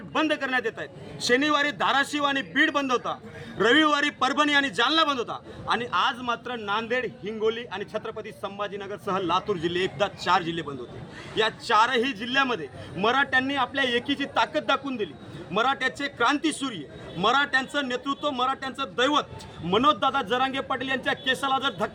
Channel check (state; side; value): identical; both; correlation 1.00